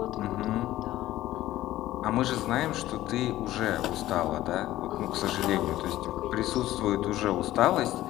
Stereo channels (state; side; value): quieter; right; 15.0 dB